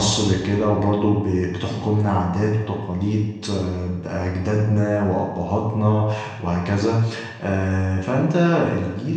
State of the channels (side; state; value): both; identical; correlation 1.00